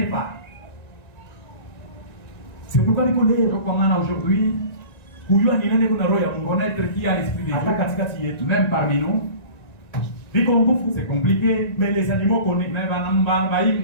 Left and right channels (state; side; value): late; right; 1.9 ms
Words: pas. C'est pourquoi les collègues, Donc, on a aujourd'hui connaître qui a l'esprit de Dieu, même parmi nous. C'est compliqué. Mais les animaux connaissent.